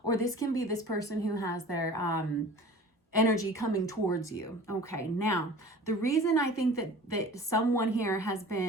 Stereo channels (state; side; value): normal; both; correlation 0.42